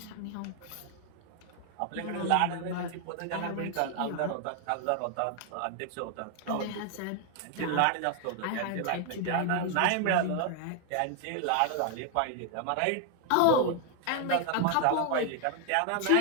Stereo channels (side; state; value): both; different; correlation 0.00